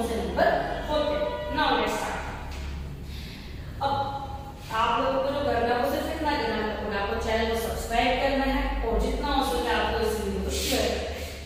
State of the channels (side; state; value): both; identical; correlation 1.00